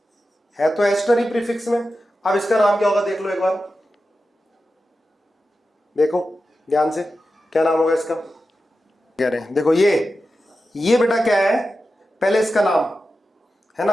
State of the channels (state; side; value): normal; both; correlation 0.92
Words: है तो एस्टर ही प्रीफिक्स में। अब इसका नाम क्या होगा, देख लो एक बार, देखो ध्यान से, क्या नाम होगा इसका, कह रहे हैं देखो ये बेटा क्या है, पहले इसका नाम है